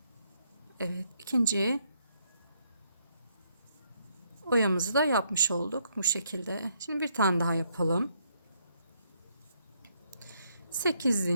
Evet, ikinci oyamızı da yapmış olduk bu şekilde. Şimdi bir tane daha yapalım. 8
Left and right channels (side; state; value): both; inverted; correlation -0.74